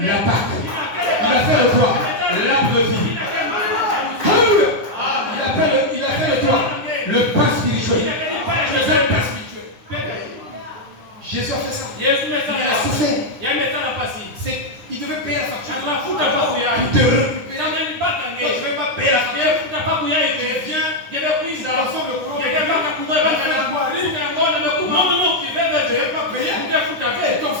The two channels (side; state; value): left; late; 9.8 ms